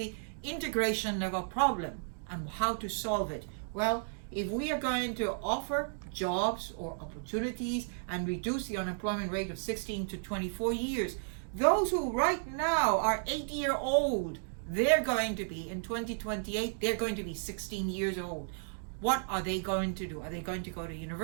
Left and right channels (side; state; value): left; silent; digital silence